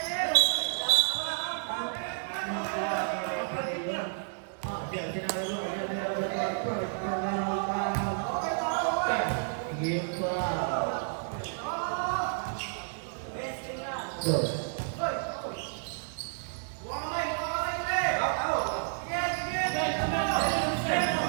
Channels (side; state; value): left; silent; digital silence